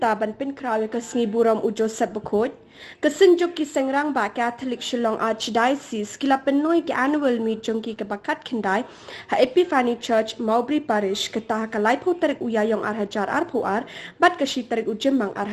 pen krawi ke sengi buram ujo set bekot, ke Synjuk ki Seng Rangbah Katholik Shillong Archdiocese kila penoi ki annual meet jongki ke bakat kendai ha Epiphany Church Mowbray Parish ke tah ka laipo tarik uyayong arhajar arpoar bat ke shi tarik ujemang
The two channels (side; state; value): both; identical; correlation 1.00